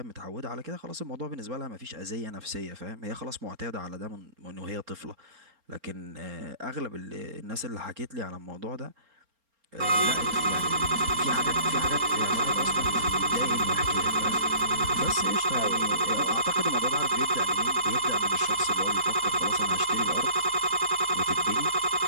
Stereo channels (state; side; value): late; left; 4.3 ms